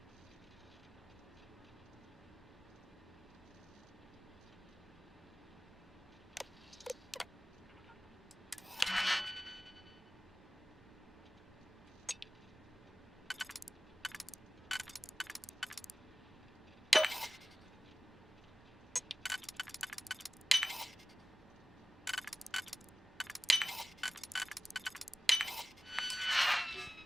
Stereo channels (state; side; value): normal; both; correlation 0.98